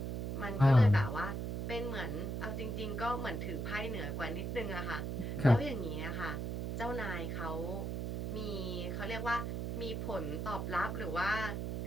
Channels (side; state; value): right; noise; hum, 2 dB below the sound